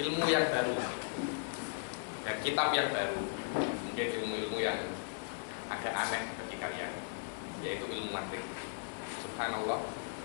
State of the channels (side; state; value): right; silent; 53 dB below the other